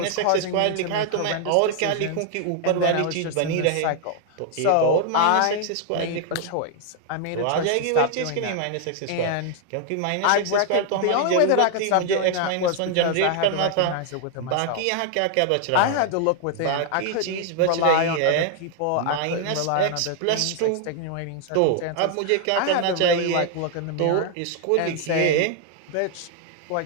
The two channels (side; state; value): both; different; correlation 0.00